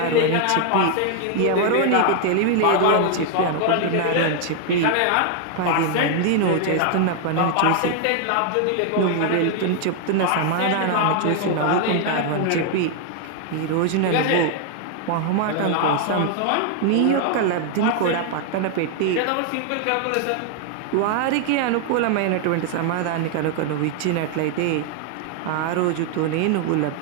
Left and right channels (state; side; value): different; both; correlation 0.00